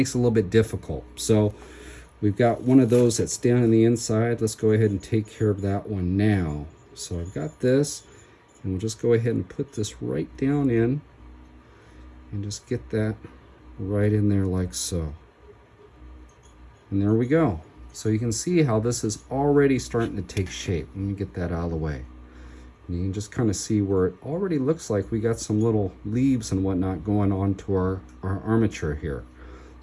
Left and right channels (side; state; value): both; identical; correlation 1.00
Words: it a little bit difficult. So we've got one of those that's down on the inside. Let's go ahead and take care of that one now. So I've got this, and we'll just go ahead and put this right down in, and just get that right in there like so. And there we go. So you can see how this is already starting to take shape. Let me get that out of the way. And you can just kind of see where it already looks like we got some little leaves and whatnot going on to our armature here.